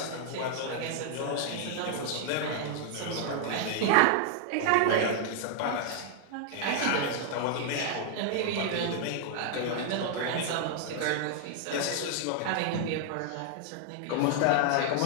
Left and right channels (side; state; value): both; different; correlation 0.00